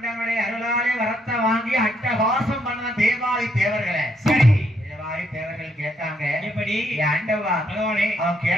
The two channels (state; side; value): normal; both; correlation 0.74